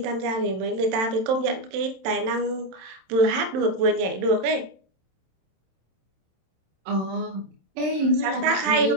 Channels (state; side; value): late; left; 27 ms